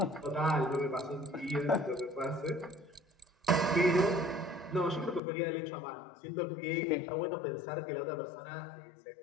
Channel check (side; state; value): right; drops out; at 5.2 s